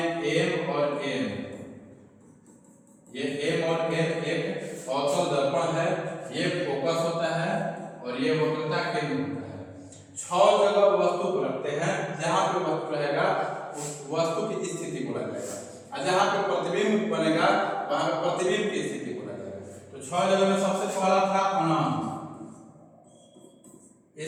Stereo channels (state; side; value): identical; both; correlation 1.00